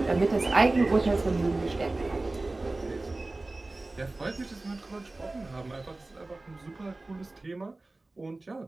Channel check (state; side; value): quieter; left; 3.0 dB